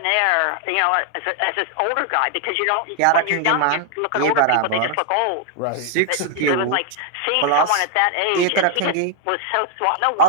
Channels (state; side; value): different; both; correlation 0.00